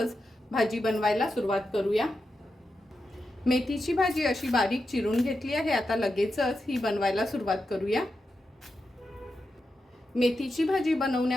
भाजी बनवायला सुरुवात करूया. मेथीची भाजी अशी बारीक चिरून घेतली आहे. आता लगेचच ही बनवायला सुरुवात करूया. मेथीची भाजी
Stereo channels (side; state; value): both; normal; correlation 0.88